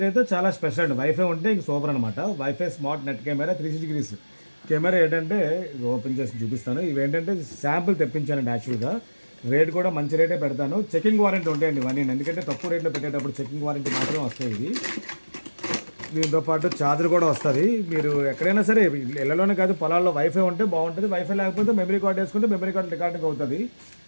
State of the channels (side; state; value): both; inverted; correlation -1.00